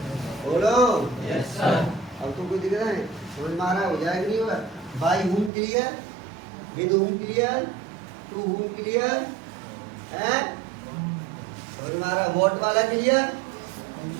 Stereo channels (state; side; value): drops out; left; at 5.5 s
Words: बोलो यस सर। अब तो कोई दिख रहा है? समझ में आ रहा है? हो जाएगा नहीं होगा? By whom clear, with whom clear, to whom clear है? समझ में आ रहा है? वॉट वाला क्लियर?